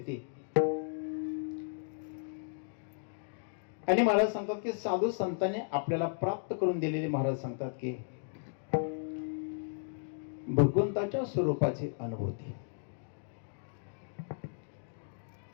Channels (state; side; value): silent; right; digital silence